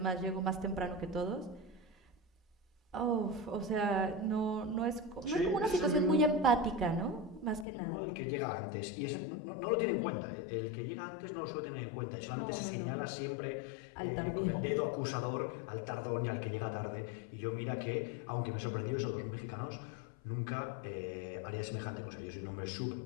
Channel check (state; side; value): drops out; right; at 7.7 s